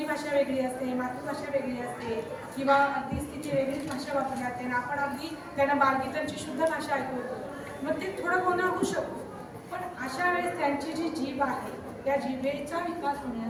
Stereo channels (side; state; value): both; identical; correlation 1.00